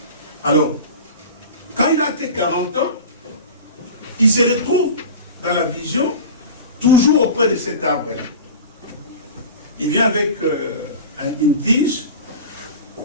Alors, quand il a atteint 40 ans, il se retrouve dans la vision, toujours auprès de cet arbre. Il vient avec une tige,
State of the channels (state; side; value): inverted; both; correlation -0.33